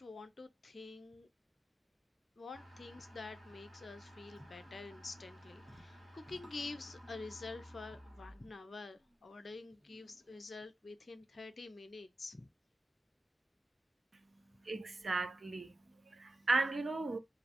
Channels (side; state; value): both; normal; correlation 0.92